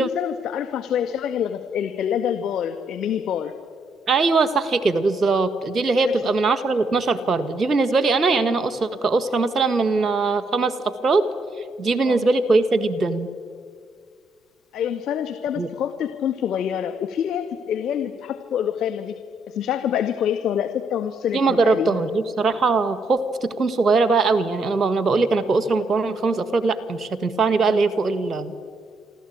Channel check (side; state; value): both; normal; correlation 0.74